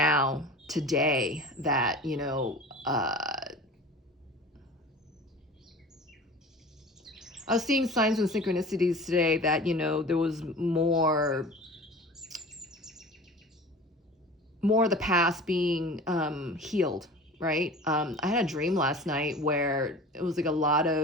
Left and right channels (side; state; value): both; normal; correlation 0.39